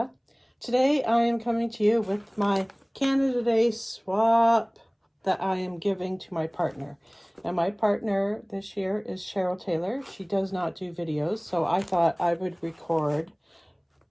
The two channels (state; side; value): identical; both; correlation 1.00